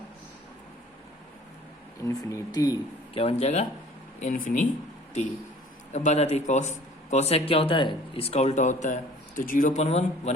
इन्फिनिटी। क्या बन जाएगा, इन्फिनिटी। अब बात आती है कॉस। कॉसेक क्या होता है, इसका उल्टा होता है। तो 0/1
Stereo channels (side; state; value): both; normal; correlation 0.50